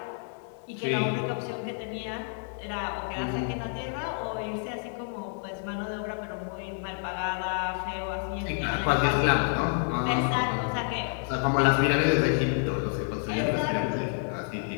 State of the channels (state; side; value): silent; right; 59 dB below the other